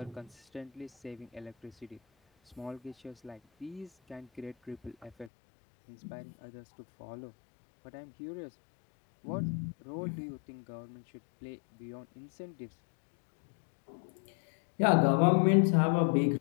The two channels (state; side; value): drops out; right; at 5.3 s